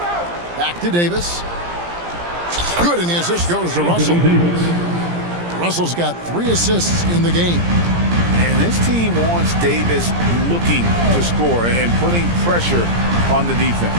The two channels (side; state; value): left; late; 17 ms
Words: Back to Davis. Good, and the assist goes to Russell. Russell's got 3 assists in the game. And this team wants Davis looking to score and putting pressure on the defense.